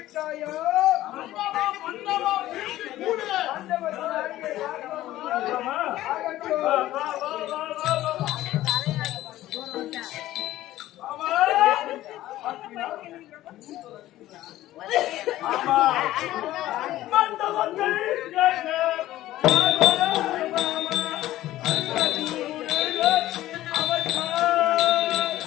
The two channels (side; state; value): right; quieter; 14.9 dB